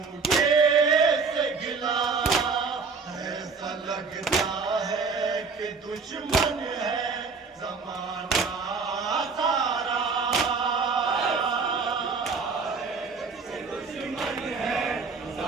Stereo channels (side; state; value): left; quieter; 4.8 dB